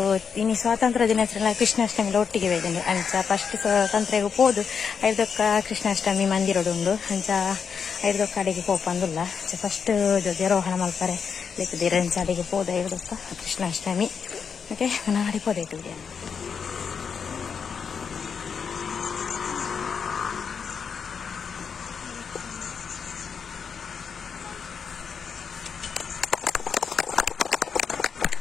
ಇನ್ನು ಸ್ವಾತಂತ್ರ್ಯ ದಿನಾಚರಣೆ ಕೃಷ್ಣಾಷ್ಟಮಿಲ ಒಟ್ಟಿಗೆ ವೇದೆಂಡು ಅಂಚ ಫಸ್ಟ್ ಸ್ವಾತಂತ್ರ್ಯಗೂ ಪೋದು ಐದೊಕ್ಕ ಕೃಷ್ಣಾಷ್ಟಮಿ ಮಂದಿರಡುಂಡು ಅಂಚ ಐದೊಕ್ಕ ಅಡಿಗೆ ಪೋಪಂದುಲ್ಲ ಅಂಚ ಫಸ್ಟ್ ಧ್ವಜಾರೋಹಣ ಮಲ್ಪರೆ ಲೆಕ್ಕದಿರ ಅಂಚ ಅಡಿಗೆ ಪೋದ ಐದೊಕ್ಕ ಕೃಷ್ಣಾಷ್ಟಮಿ ಓಕೆ ನಾನು ಅಡಿ ಪೋದೈತು ವಿಡಿಯೋ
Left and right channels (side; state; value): right; quieter; 6.4 dB